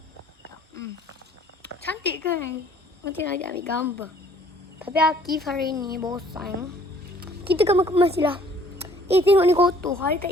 Cantik kan? Macam nak ambil gambar. Tapi Akif hari ni bosan. Kita kemas je lah. Tengok ni kotor. Hari tak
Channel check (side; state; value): both; normal; correlation 0.57